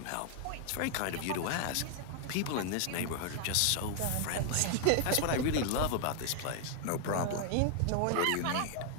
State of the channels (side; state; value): both; different; correlation 0.00